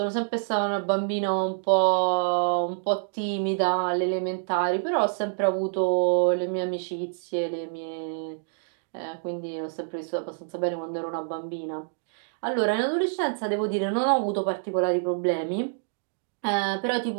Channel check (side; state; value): left; silent; digital silence